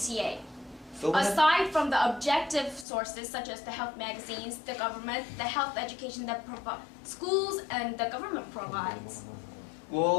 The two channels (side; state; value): right; drops out; at 2.9 s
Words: Aside from the objective sources such as the health magazines, the government, the health education that schools and the government provides.